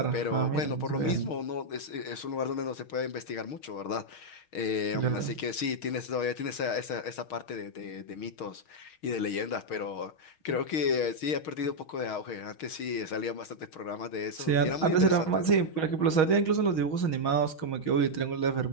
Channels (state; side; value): late; right; 6.4 ms